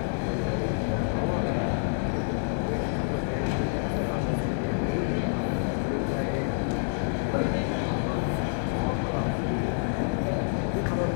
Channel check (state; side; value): silent; right; 60 dB below the other